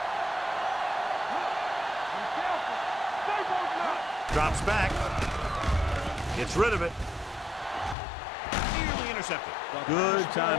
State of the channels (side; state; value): right; drops out; at 8.0 s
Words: Drops back. Gets rid of it. Nearly intercepted. Good